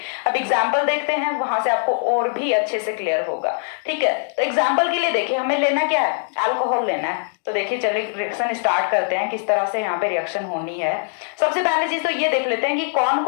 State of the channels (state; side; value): silent; right; digital silence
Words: अब एग्जांपल देखते हैं, वहां से आपको और भी अच्छे से क्लियर होगा। ठीक है, तो एग्जांपल के लिए देखिए हमें लेना क्या है, अल्कोहल लेना है। तो देखिए चलिए रिएक्शन स्टार्ट करते हैं, किस तरह से यहाँ पे रिएक्शन होनी है। सबसे पहली चीज तो ये देख लेते हैं कि कौन